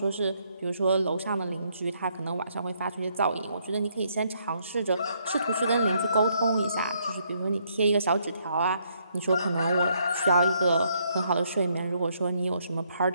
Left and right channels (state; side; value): inverted; both; correlation -0.72